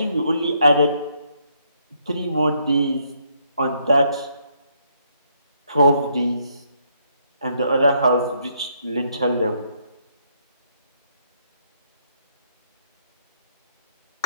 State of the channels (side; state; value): both; inverted; correlation -0.72